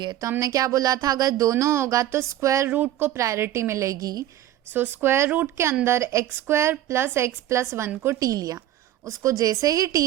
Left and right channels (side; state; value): left; quieter; 13.0 dB